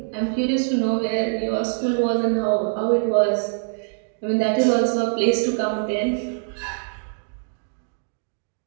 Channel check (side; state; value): left; silent; digital silence